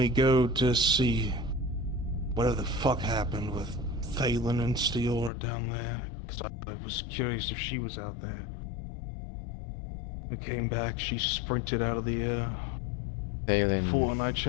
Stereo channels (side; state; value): right; drops out; at 5.3 s